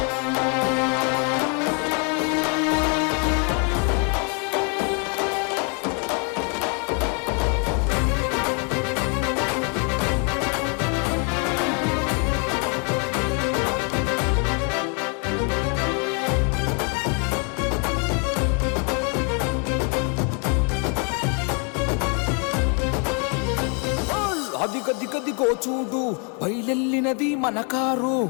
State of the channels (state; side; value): quieter; right; 37.2 dB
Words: అదిగదిగదిగో చూడు బయలెల్లినది మన కారు,